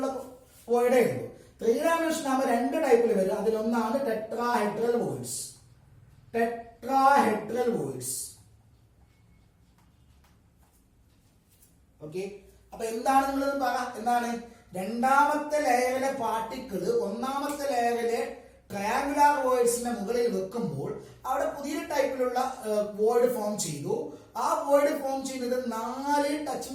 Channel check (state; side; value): identical; both; correlation 1.00